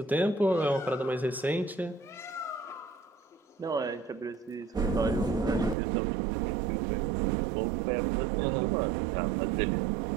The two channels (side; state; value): left; drops out; at 5.8 s